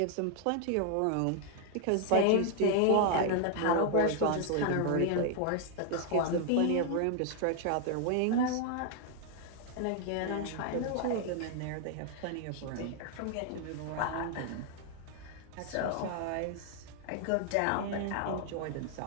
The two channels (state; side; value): different; both; correlation 0.00